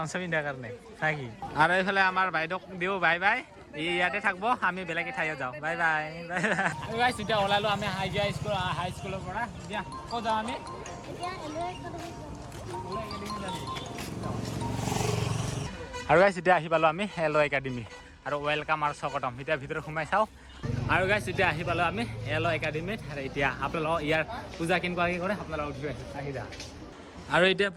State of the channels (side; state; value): both; identical; correlation 1.00